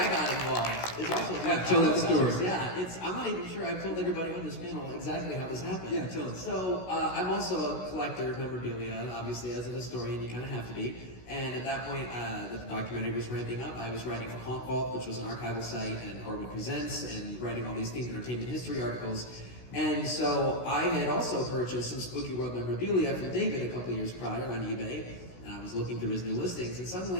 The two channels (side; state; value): right; late; 16 ms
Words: got involved is also tell that story. Yeah, I'm not even sure I've told everybody on this panel exactly how this happened. Yeah, tell us. So I'm also a collector of memorabilia, and obviously as a historian, you kind of have to be. And at that point, the documentary was ramping up. I was writing for Haunt Vault, which was an archival site, and Horwood Presents, and writing all these themed entertainment history articles. And so I had also purchased some SpookyWorld memorabilia from David a couple years prior on eBay. And I was looking through his new listings, and